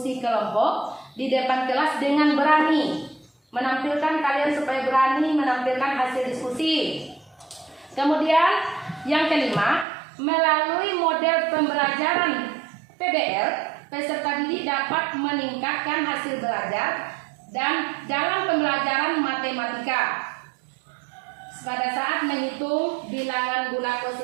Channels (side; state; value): left; drops out; at 9.9 s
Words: kelompok di depan kelas dengan berani. Menampilkan kalian supaya berani menampilkan hasil diskusi. Kemudian yang kelima, melalui model pembelajaran PBL, peserta didik dapat meningkatkan hasil belajar dan dalam pembelajaran matematika pada saat menghitung bilangan bulat